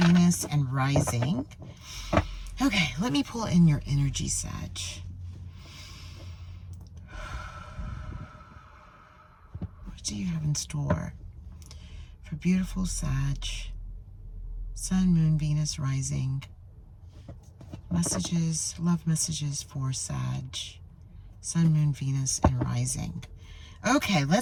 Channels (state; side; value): identical; both; correlation 1.00